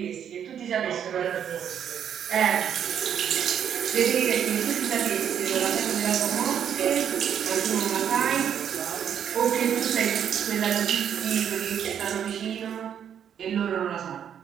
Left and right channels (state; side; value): quieter; left; 8.8 dB